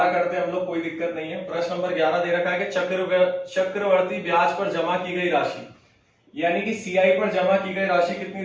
करते हैं हम लोग, कोई दिक्कत नहीं है। प्रश्न नंबर 11 दे रखा है कि चक्रवर्ती ब्याज पर जमा की गई राशि, यानी कि सीआई पर जमा की गई राशि कितनी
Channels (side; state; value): both; identical; correlation 1.00